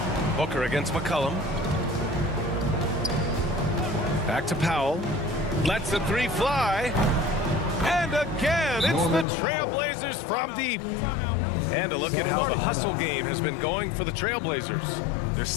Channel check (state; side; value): drops out; right; at 9.2 s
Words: Booker against McCollum. Back to Powell. Lets the 3 fly. And again, it's the Trailblazers from deep. And a look at how the hustle game has been going for the Trailblazers. They're